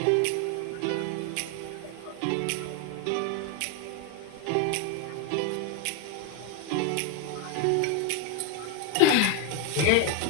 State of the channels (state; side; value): different; both; correlation 0.01